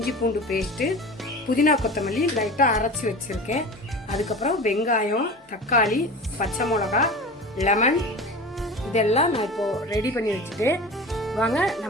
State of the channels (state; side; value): normal; both; correlation 0.34